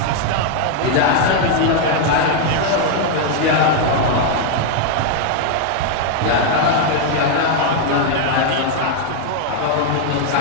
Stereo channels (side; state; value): both; different; correlation 0.00